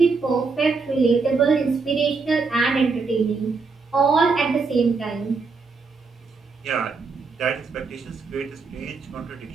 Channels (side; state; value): left; quieter; 4.5 dB